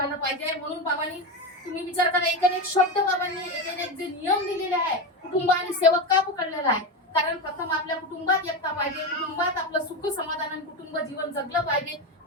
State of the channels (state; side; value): normal; both; correlation 0.17